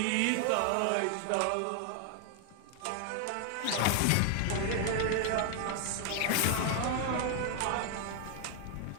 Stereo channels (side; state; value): both; different; correlation 0.00